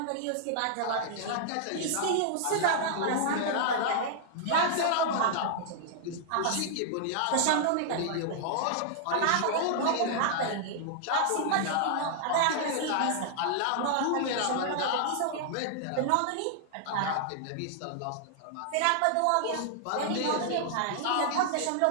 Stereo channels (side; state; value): both; different; correlation -0.01